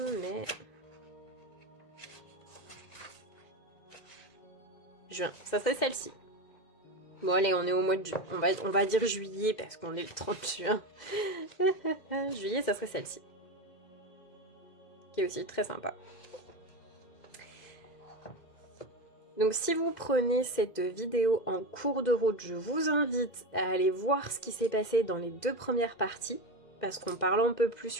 mai... Juin, ça serait celle-ci. Bon allez, on est au mois de juin. On va dire juillet parce qu'on est le 30 juin. Juillet, ça serait celle-ci. Qui est aussi très sympa. Donc si vous prenez cette vidéo en cours de route, je vous invite à aller voir ce qui s'est passé dans les 2 premières parties. Parce qu'on parle un peu plus,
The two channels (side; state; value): right; late; 2.0 ms